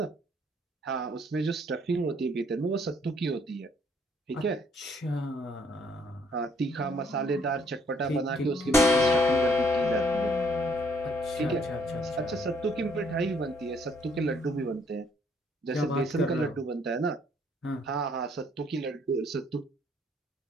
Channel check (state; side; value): normal; both; correlation 0.65